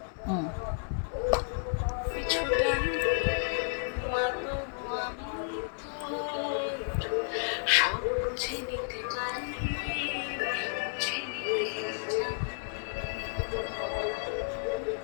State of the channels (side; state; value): right; silent; digital silence